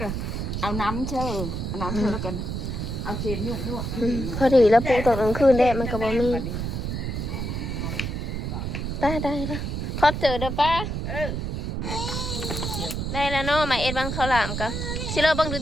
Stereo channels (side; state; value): right; noise; rumble, 3 dB below the sound